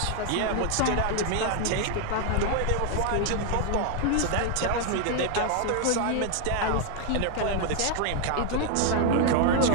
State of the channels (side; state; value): both; different; correlation 0.00